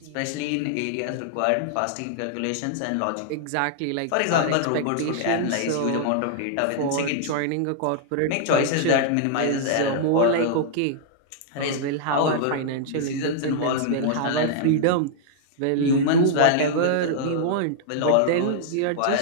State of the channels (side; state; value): both; different; correlation -0.01